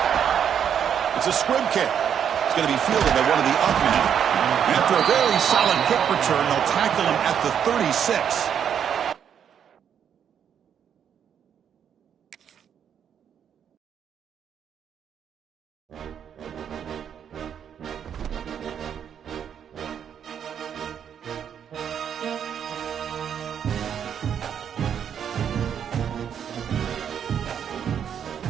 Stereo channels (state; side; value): quieter; left; 8.4 dB